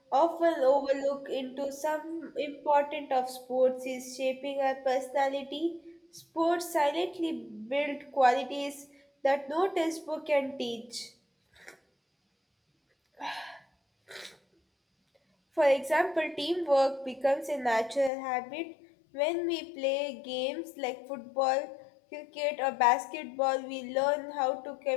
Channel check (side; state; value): right; drops out; at 18.1 s